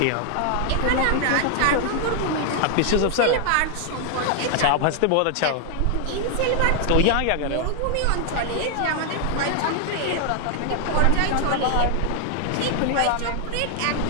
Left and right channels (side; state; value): both; different; correlation 0.00